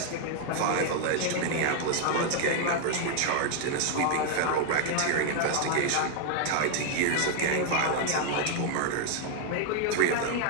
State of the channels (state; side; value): different; both; correlation 0.00